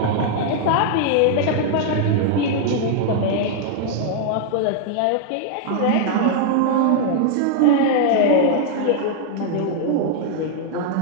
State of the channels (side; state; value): both; different; correlation 0.00